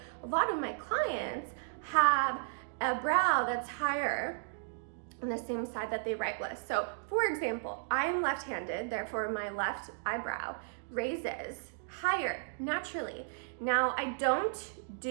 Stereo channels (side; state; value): left; silent; digital silence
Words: a lot of my clients have a brow that's higher on the same side that they write with. So, for example, I am left-handed, therefore my left eyebrow raises higher naturally. Now, I don't